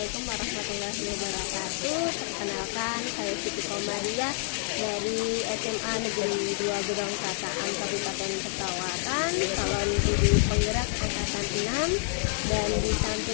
warahmatullahi wabarakatuh. Perkenalkan, saya Siti Komariah dari SMA Negeri 2 Gedong Kataan Kabupaten Pesawaran, calon guru penggerak angkatan 6. Dan di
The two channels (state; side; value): silent; right; 58 dB below the other